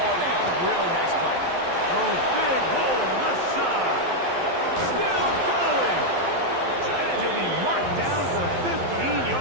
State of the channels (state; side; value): late; left; 11 ms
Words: down, really nice play. Oh, big hole left side. Still going. And he'll be marked down to the